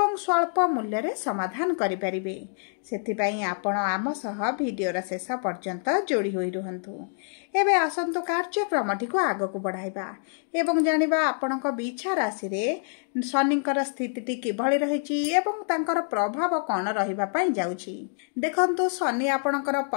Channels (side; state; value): right; silent; 60 dB below the other